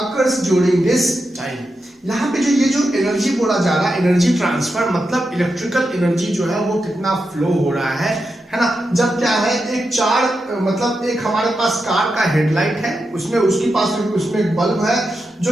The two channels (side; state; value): both; normal; correlation 0.88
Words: during this time? यहाँ पे जो एनर्जी बोला जा रहा है, एनर्जी ट्रांसफर मतलब इलेक्ट्रिकल एनर्जी जो है वो कितना फ्लो हो रहा है ना। जब क्या है, एक हमारे पास कार का हेडलाइट है, उसमें उसके पास उसमें एक बल्ब है जो